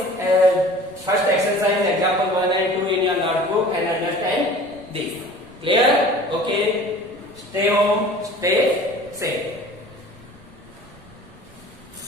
first exercise example 1 and 2 in your notebook and understand this. Clear? Okay. Stay home. Stay safe.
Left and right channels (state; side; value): noise; right; rumble, 25 dB below the sound